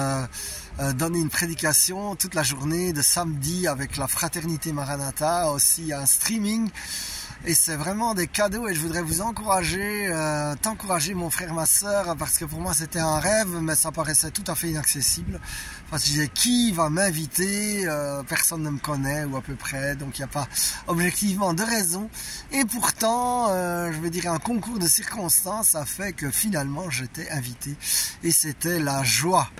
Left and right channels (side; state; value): both; identical; correlation 1.00